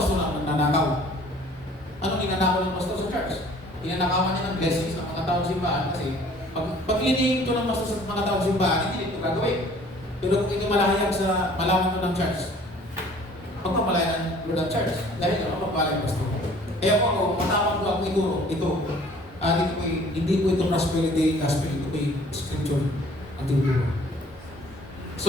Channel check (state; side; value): normal; both; correlation 0.53